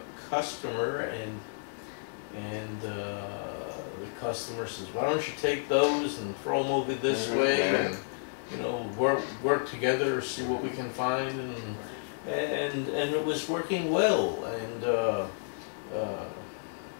customer, and the customer says, "Why don't you take those and throw them over this way, and you know, work together, see what we can find," and it was working well, and the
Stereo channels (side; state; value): right; silent; digital silence